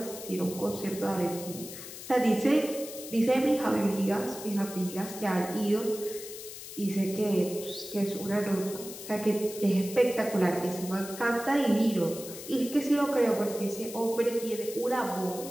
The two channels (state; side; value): noise; left; hiss, 12 dB below the sound